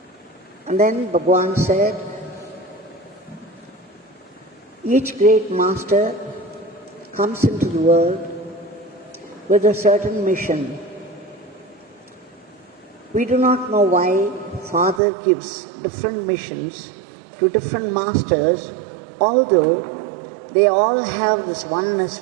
And then Bhagwan said, each great master comes into the world with a certain mission. We do not know why Father gives different missions to different masters, although they all have this oneness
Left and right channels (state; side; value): drops out; left; at 15.0 s